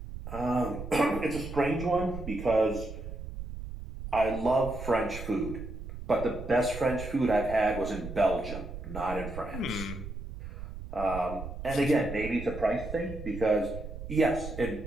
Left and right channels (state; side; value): noise; right; rumble, 9 dB below the sound